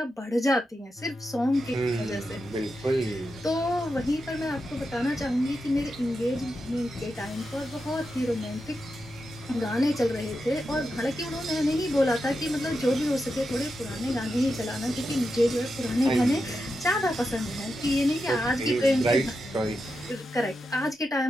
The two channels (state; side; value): normal; both; correlation 0.88